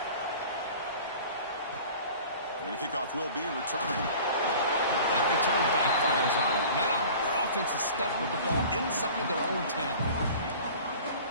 Kickoff will be returned. That return backfires on them. Now their offense is stuck with the ball inside their own 10.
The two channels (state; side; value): inverted; both; correlation -0.43